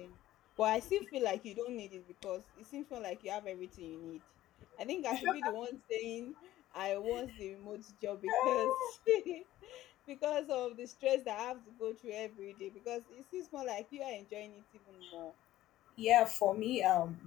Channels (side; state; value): right; quieter; 14.7 dB